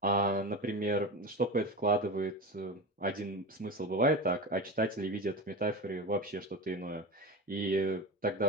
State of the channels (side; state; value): both; normal; correlation 0.25